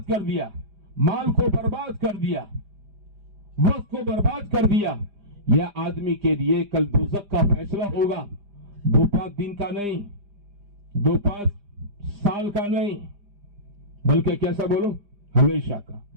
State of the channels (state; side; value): late; left; 4.9 ms